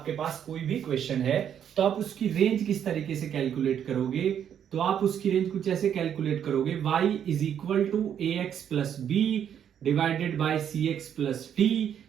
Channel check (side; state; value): left; quieter; 9.0 dB